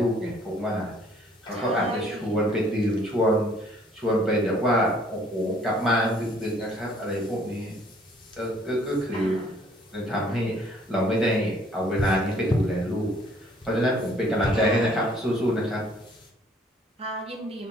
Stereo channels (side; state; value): both; normal; correlation 0.60